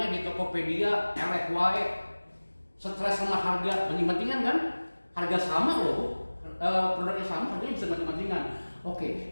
di Tokopedia, elek wae, stres sama harga, banding-bandingan kan? Harga sama loh, produknya sama, harganya bisa banding-bandingan.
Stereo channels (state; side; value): inverted; both; correlation -1.00